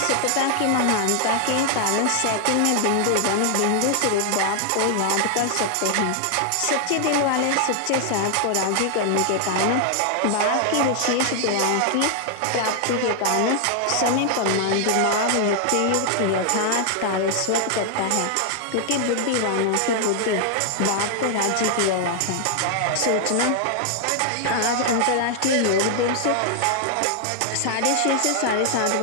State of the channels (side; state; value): both; different; correlation 0.00